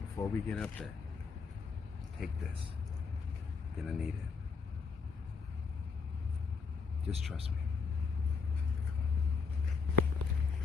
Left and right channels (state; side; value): quieter; right; 5.2 dB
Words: before we get up there, take this. You're gonna need it. Just trust me.